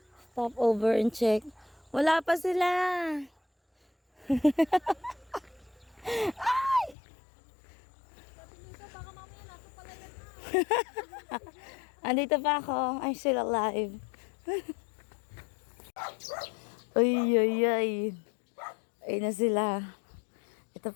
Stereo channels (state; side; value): drops out; right; at 7.0 s